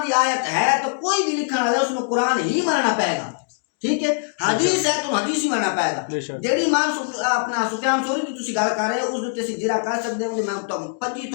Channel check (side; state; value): right; silent; digital silence